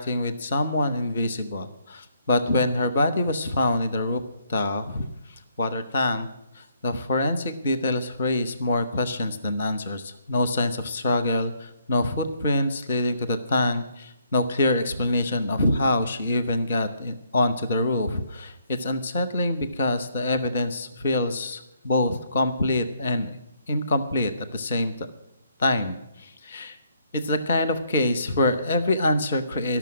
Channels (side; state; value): both; inverted; correlation -0.70